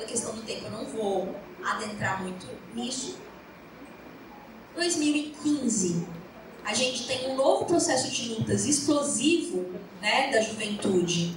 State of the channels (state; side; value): identical; both; correlation 1.00